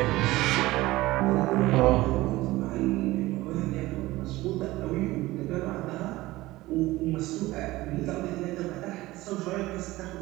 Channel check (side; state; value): left; quieter; 18.4 dB